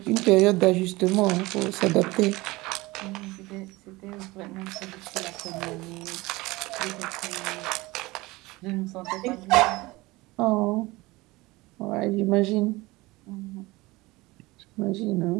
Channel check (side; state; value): left; quieter; 21.3 dB